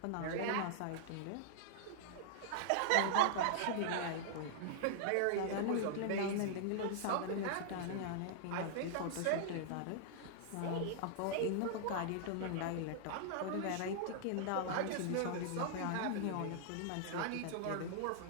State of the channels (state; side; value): different; both; correlation -0.01